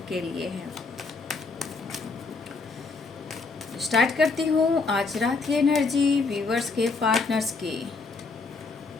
के लिए है। स्टार्ट करती हूँ आज रात की एनर्जी व्यूवर्स के पार्टनर्स की।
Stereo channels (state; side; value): quieter; right; 4.1 dB